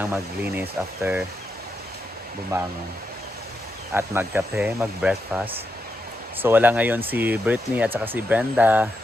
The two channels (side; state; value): both; normal; correlation 0.85